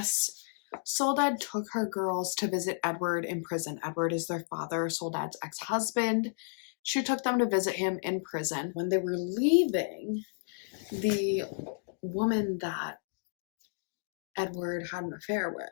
Soledad took her girls to visit Edward in prison. Edward is their father, Soledad's ex-husband. She took them to visit him in prison. When they were leaving, the woman that Edward had an affair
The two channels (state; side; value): silent; right; digital silence